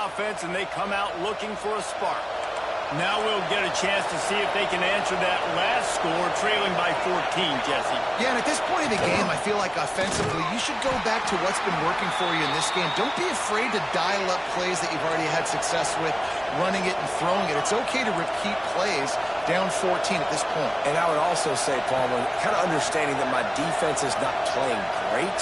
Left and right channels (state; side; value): identical; both; correlation 1.00